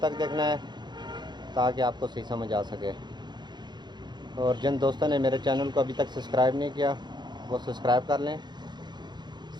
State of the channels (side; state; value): left; late; 0.21 ms